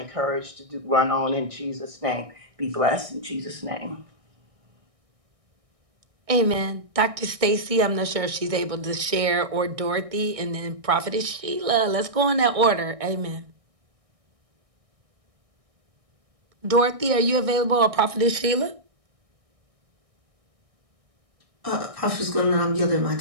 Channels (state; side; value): late; left; 1.6 ms